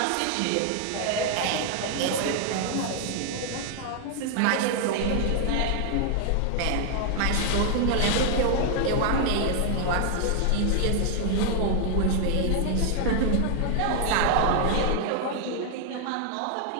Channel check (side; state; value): both; different; correlation 0.00